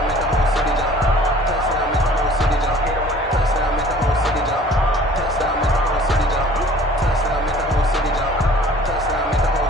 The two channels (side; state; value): both; normal; correlation 0.50